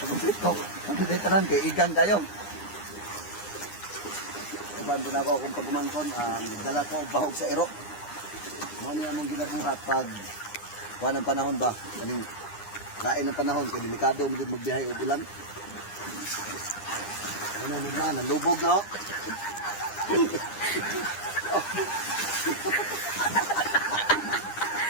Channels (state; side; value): late; right; 9.8 ms